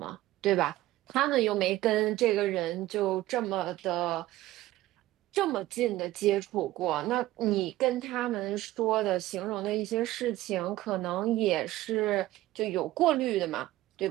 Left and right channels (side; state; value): left; quieter; 16.0 dB